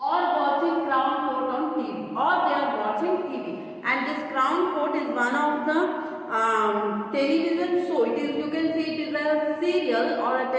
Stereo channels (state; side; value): identical; both; correlation 1.00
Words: Or watching Crown Court on TV, or they are watching TV. And this Crown Court is one of the television show. It is, you can see it is a serial or a